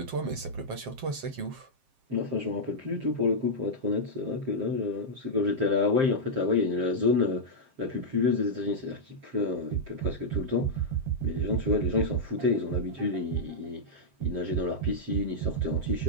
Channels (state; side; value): late; left; 7.5 ms